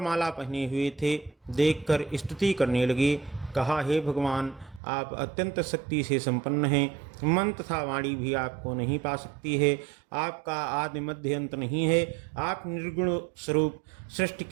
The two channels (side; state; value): left; drops out; at 4.8 s